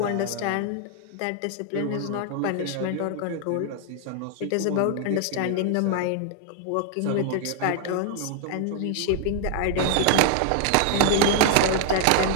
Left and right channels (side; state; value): both; different; correlation 0.00